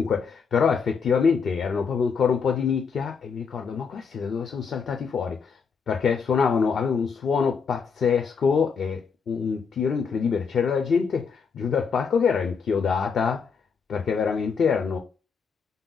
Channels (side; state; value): right; quieter; 5.8 dB